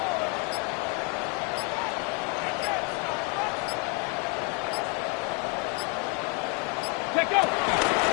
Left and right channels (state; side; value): quieter; right; 33.5 dB